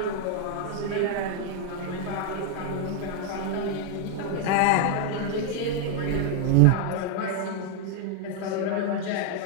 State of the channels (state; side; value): different; both; correlation 0.00